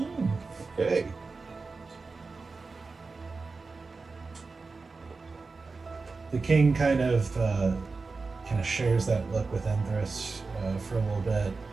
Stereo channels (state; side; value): quieter; left; 4.1 dB